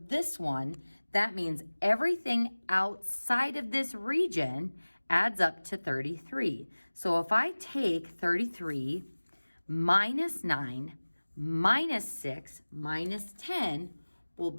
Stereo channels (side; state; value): both; inverted; correlation -1.00